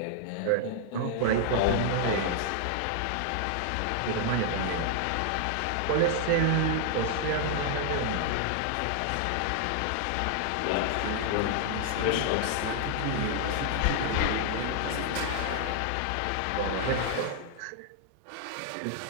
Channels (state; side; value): different; both; correlation 0.00